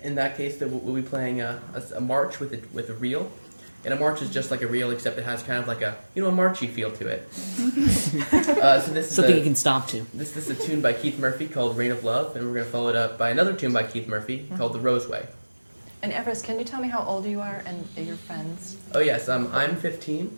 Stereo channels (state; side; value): inverted; both; correlation -1.00